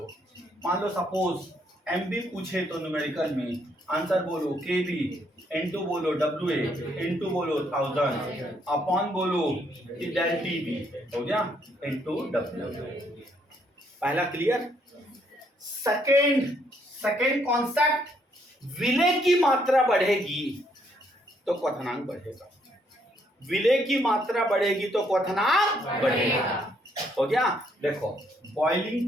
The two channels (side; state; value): both; normal; correlation 0.71